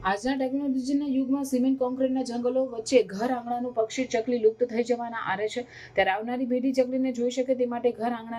આજના ટેકનોલોજીના યુગમાં સિમેન્ટ કોન્ક્રીટના જંગલો વચ્ચે ઘર આંગણાનું પક્ષી ચકલી લુપ્ત થઈ જવાના આરે છે. ત્યારે આવનારી પેઢી ચકલીને જોઈ શકે તે માટે ઘર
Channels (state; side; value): identical; both; correlation 1.00